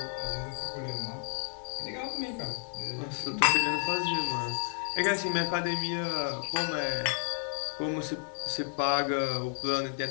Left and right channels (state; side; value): silent; right; 57 dB below the other